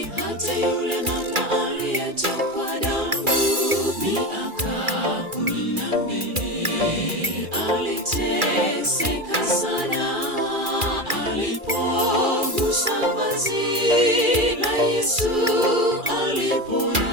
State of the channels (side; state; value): left; late; 2.4 ms